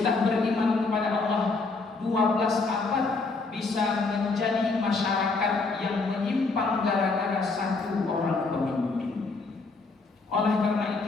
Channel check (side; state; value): right; quieter; 3.9 dB